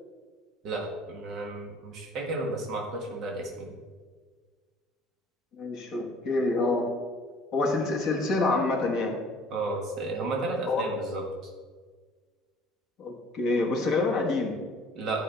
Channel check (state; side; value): normal; both; correlation 0.53